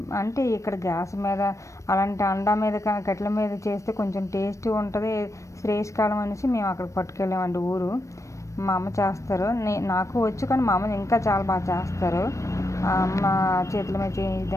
అంటే ఇక్కడ గ్యాస్ మీద అలాంటి అండా మీద కట్టెల మీద చేస్తే కొంచెం టేస్ట్ ఉంటుంది, శ్రేయస్కాలం అనేసి మేము అక్కడికి పట్టుకెళ్ళామండి. ఊరు మా అమ్మ చేస్తారు, నాకు వచ్చు కానీ మా అమ్మ ఇంకా చాలా బాగా చేస్తారు. అమ్మ చేతుల మీద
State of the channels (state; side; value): late; right; 0.15 ms